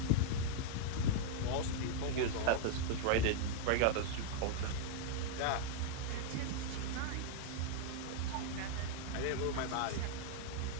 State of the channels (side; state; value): both; different; correlation -0.01